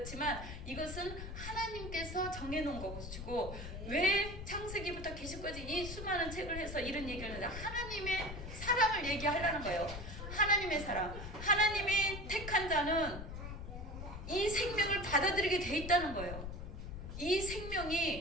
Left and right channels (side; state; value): left; noise; rumble, 8 dB below the sound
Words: 이것은 하나님께서 정해놓은 것이고 왜 창세기부터 계시까지 이 수많은 책을 해서 이런 얘기를 하는데 하나님의 사랑을 얘기하려는 거예요. 하나님의 사랑. 하나님이 택한 자는 이 생명을 받아들이게 돼 있다는 거예요. 이